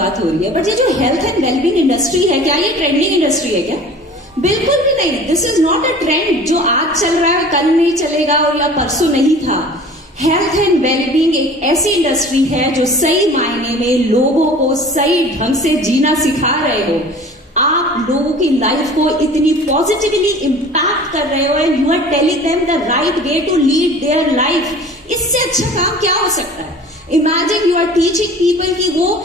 हो रही है, बट ये जो हेल्थ एंड वेलबींग इंडस्ट्री है, क्या ये ट्रेंडिंग इंडस्ट्री है क्या? बिल्कुल भी नहीं। This is not a trend जो आज चल रहा है कल नहीं चलेगा और या परसों नहीं था। हेल्थ एंड वेलबींग एक ऐसी इंडस्ट्री है जो सही मायने में लोगों को सही ढंग से जीना सिखा रहे हो। आप लोगों की लाइफ को इतनी पॉजिटिवली इंपैक्ट कर रहे हो and you are telling them the right way to lead their life. इससे अच्छा काम क्या हो सकता है? Imagine you are teaching people कि वो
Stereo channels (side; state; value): both; normal; correlation 0.44